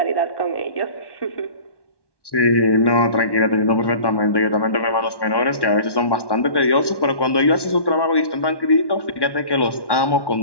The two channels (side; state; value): right; late; 1.1 ms